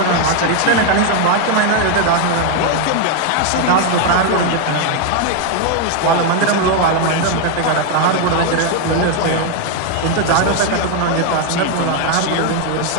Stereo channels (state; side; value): different; both; correlation 0.01